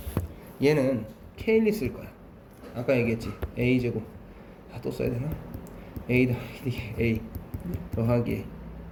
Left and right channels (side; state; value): both; identical; correlation 1.00